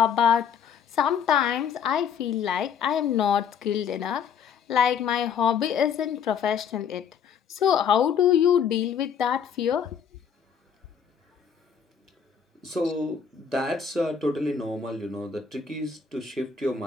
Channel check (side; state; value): right; quieter; 7.4 dB